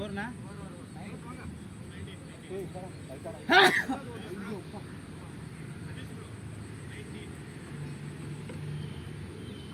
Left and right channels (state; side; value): identical; both; correlation 1.00